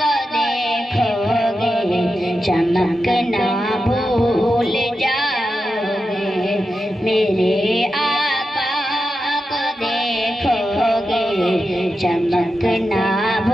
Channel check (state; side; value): normal; both; correlation 0.90